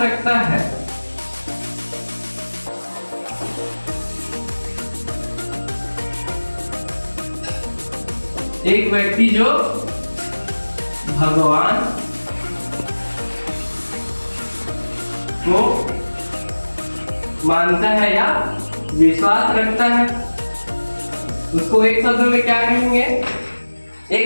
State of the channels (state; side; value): inverted; both; correlation -1.00